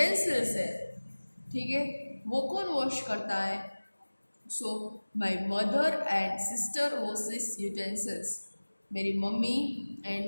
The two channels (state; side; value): inverted; both; correlation -1.00